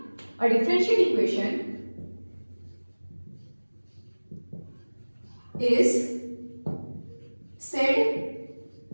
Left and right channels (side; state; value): both; inverted; correlation -1.00